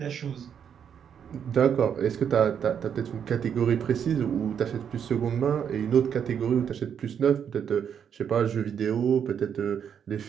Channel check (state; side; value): quieter; left; 8.0 dB